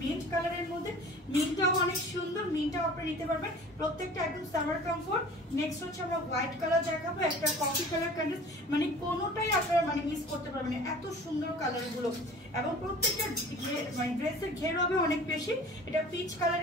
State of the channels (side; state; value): both; normal; correlation 0.44